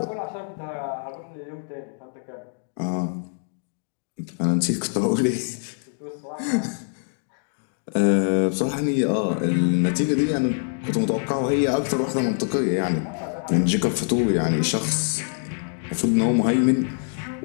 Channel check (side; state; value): right; silent; 62 dB below the other